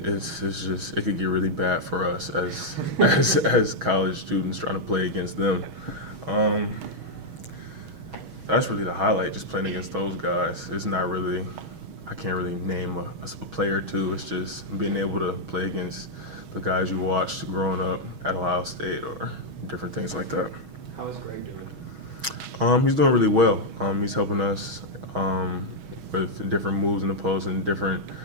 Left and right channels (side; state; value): left; late; 6.3 ms